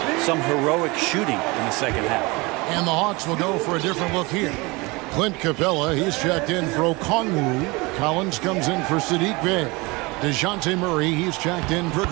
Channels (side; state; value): left; quieter; 24.9 dB